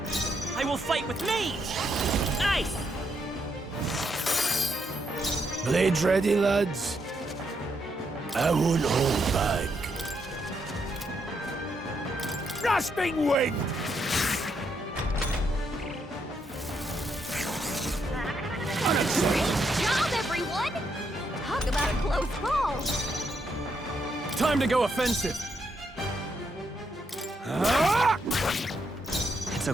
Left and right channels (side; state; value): both; normal; correlation 0.78